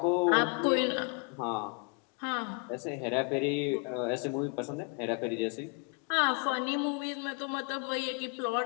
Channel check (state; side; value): quieter; right; 34.7 dB